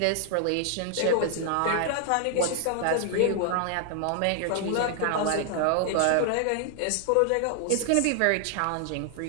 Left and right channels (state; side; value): different; both; correlation 0.00